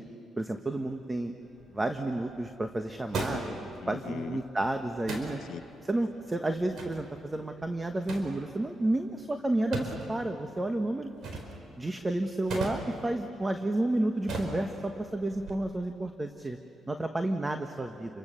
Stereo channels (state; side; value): normal; both; correlation 0.93